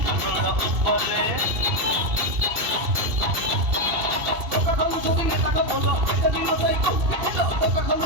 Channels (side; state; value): left; late; 2.7 ms